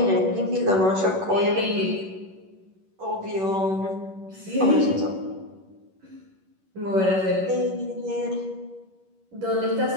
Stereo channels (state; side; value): late; left; 11 ms